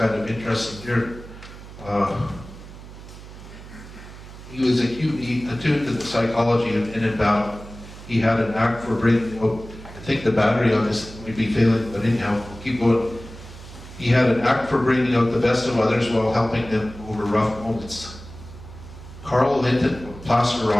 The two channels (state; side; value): noise; right; hum, 16 dB below the sound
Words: of interesting here. He was acutely attuned to the psychology of in and battle. He had an knack for bringing out, I think the battery on this might be failing, but anyhow, we'll keep going. He had an knack for bringing out the best of others while helping them over rough moments. Carl Linton of Placer